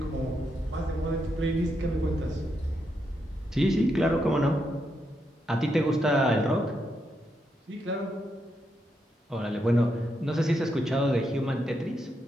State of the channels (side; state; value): both; normal; correlation 0.82